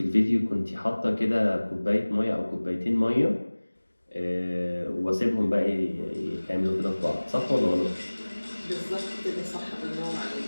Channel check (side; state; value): both; inverted; correlation -1.00